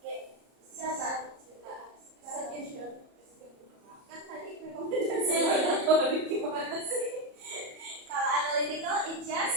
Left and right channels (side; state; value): left; late; 34 ms